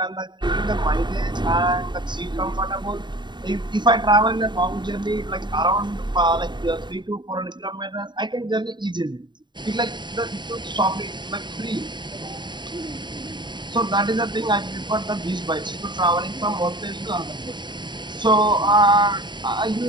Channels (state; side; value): late; left; 0.22 ms